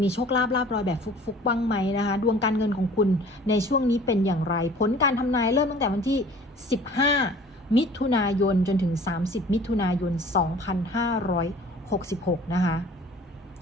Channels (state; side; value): normal; both; correlation 0.48